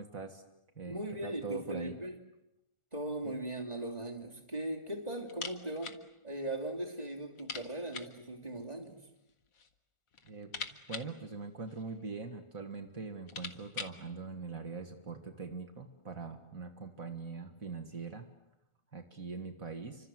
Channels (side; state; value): right; late; 1.4 ms